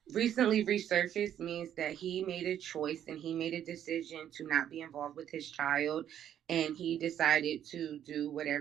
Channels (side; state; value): left; quieter; 10.2 dB